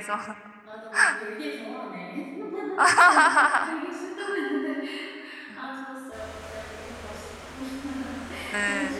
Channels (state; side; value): identical; both; correlation 1.00